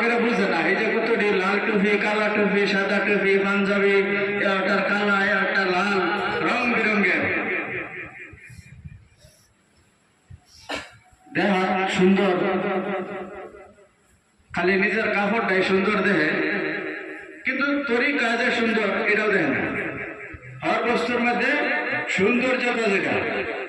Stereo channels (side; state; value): both; identical; correlation 1.00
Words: বুঝে না। এই যে কতটি লাল টুপি, কালা টুপি, সাদা টুপি, পাঞ্জাবি, একটা কালা, একটা লাল, রং বেরঙ্গের দেখা সুন্দর, খালি নিজের কাপড়টাই সুন্দর দেখে, কিন্তু তরিকা যে সুন্দর এটাও দেখে না। হর বস্তুর মধ্যে সৌন্দর্যটা যেটা,